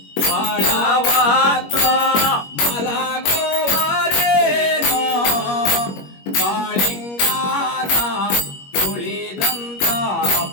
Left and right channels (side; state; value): right; late; 21 ms